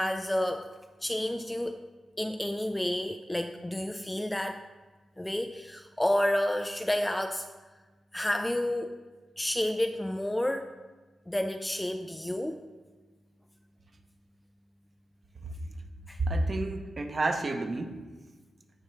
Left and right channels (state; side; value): normal; both; correlation 0.96